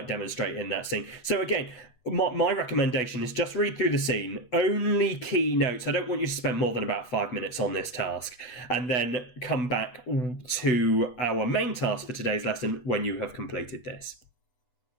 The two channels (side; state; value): right; late; 8.0 ms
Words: demonstrate in that scene. So again, my recommendation is just read through the scene, only key notes. I don't want you to spend more than about 5 minutes on this task, and then come back to our main task for today's lesson when you have completed this.